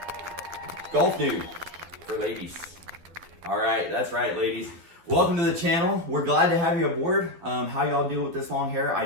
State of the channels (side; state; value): left; late; 12 ms